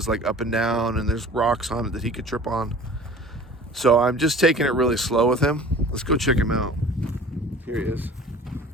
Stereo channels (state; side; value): normal; both; correlation 0.44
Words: like up and down and there's rocks on it that he could trip on. So I'm just taking it really slow with him. Let's go check him out. Here he is.